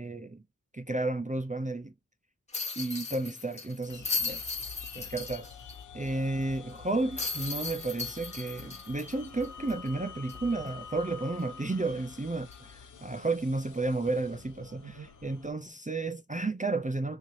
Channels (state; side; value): normal; both; correlation 0.66